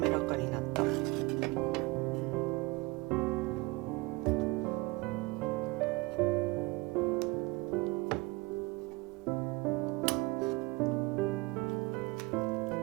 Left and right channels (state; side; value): quieter; left; 23.9 dB